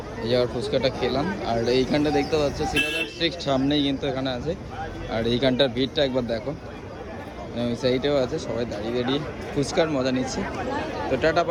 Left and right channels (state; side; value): identical; both; correlation 1.00